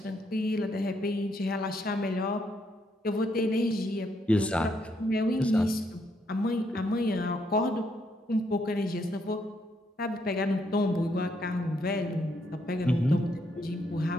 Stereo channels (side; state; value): both; normal; correlation 0.75